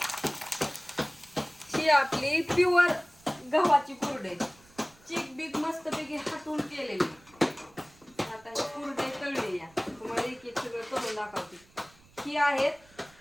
ही आपली प्युअर गव्हाची कुरडई, चिक बीक मस्तपैकी हाटून केलेली. आता ही कुरडई तळली या तुम्हाला एक एक सगळं करून दाखवते. ही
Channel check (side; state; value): right; noise; rumble, 28 dB below the sound